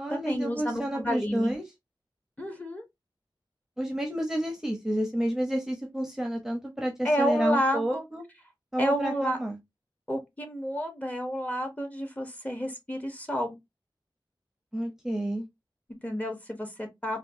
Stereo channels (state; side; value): normal; both; correlation 0.88